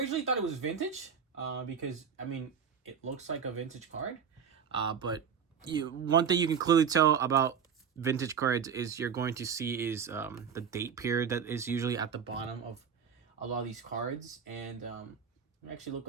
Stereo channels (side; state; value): left; quieter; 7.2 dB